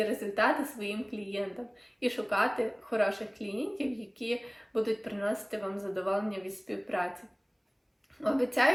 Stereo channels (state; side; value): identical; both; correlation 1.00